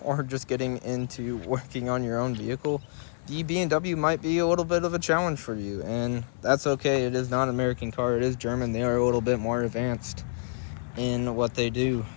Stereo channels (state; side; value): silent; right; digital silence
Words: or just getting into working on your own vehicle, the BMW might be a little bit of a challenge for you, and that's okay. It is not an American car, it is German. They are a little bit more advanced in what they do,